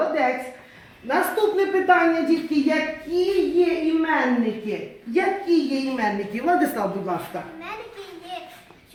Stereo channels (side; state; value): both; identical; correlation 1.00